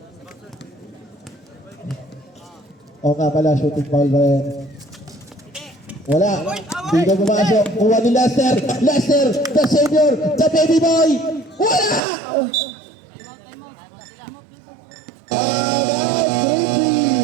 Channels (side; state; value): left; drops out; at 12.0 s